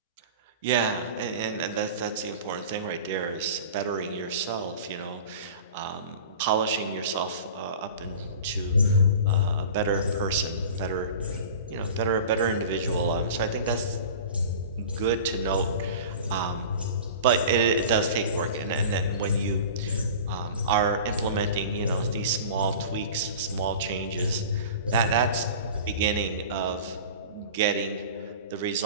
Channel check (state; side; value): inverted; both; correlation -0.37